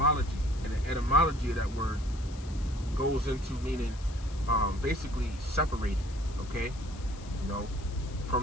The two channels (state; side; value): noise; left; hiss, 20 dB below the sound